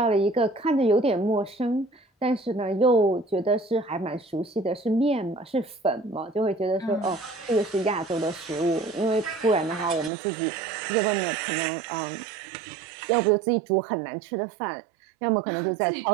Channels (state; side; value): drops out; left; at 10.1 s